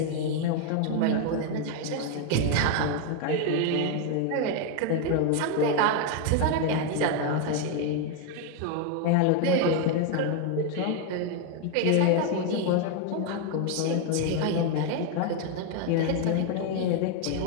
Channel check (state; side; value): different; both; correlation 0.01